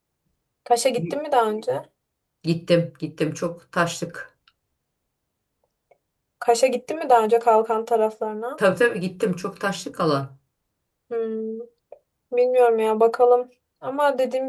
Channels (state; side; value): identical; both; correlation 1.00